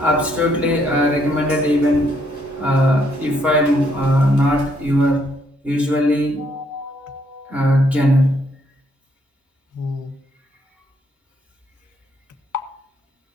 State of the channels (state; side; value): normal; both; correlation 0.72